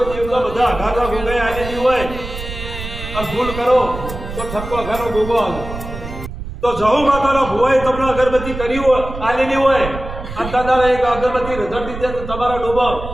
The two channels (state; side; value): noise; right; rumble, 9 dB below the sound